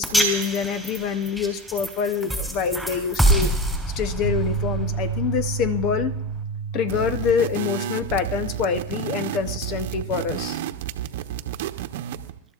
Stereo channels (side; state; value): both; normal; correlation 0.24